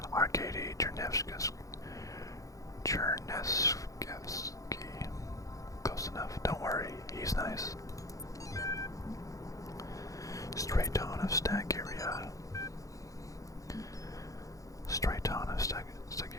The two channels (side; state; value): right; late; 0.16 ms